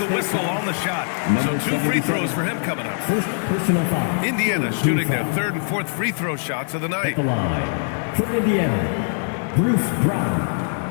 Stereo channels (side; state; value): right; silent; digital silence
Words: whistle on the shot. So 2 free throws for him coming up. First personal foul. Indiana shooting their 3rd and 4th free throw shots of the night. The line. For Indiana, Bruce Brown.